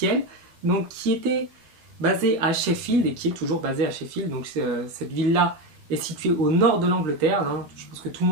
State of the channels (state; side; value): late; left; 12 ms